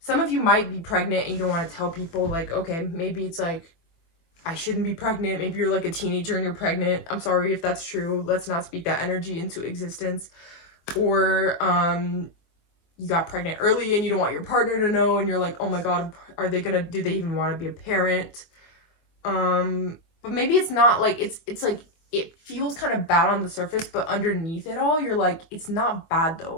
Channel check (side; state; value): right; late; 24 ms